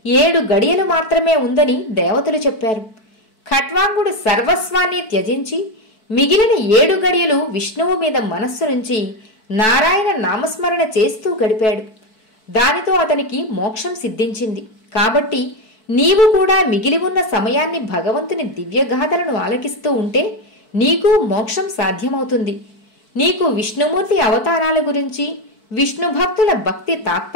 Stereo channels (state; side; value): late; right; 4.6 ms